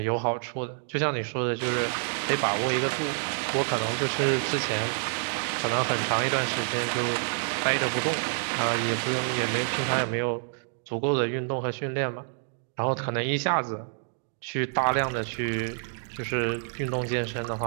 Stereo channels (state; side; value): silent; left; digital silence